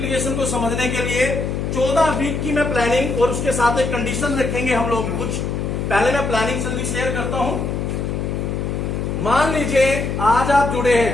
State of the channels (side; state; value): left; noise; hum, 2 dB below the sound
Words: को समझने के लिए 14 वीक की मैं प्लानिंग और उसके साथ एक कंडीशन रखेंगे हम लोग कुछ। पहले मैं प्लानिंग जल्दी शेयर करता हूं। मान लीजिए आज आप जुड़े